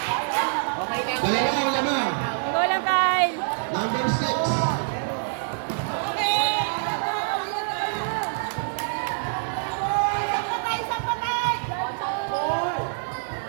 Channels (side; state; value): left; silent; digital silence